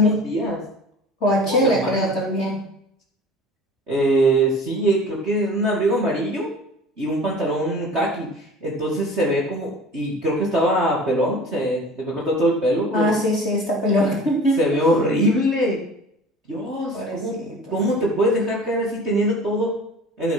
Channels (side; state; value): both; normal; correlation 0.42